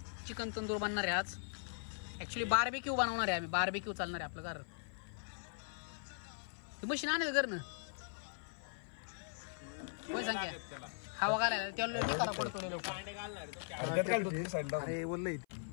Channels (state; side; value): silent; right; 51 dB below the other